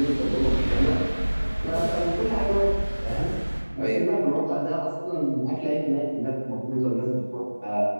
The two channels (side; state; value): both; inverted; correlation -1.00